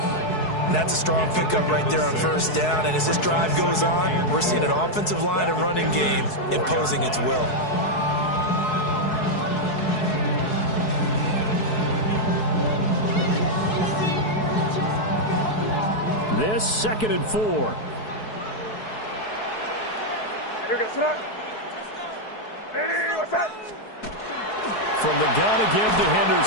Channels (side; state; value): right; late; 4.7 ms